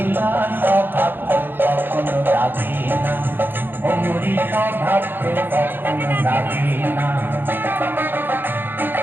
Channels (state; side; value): late; left; 0.097 ms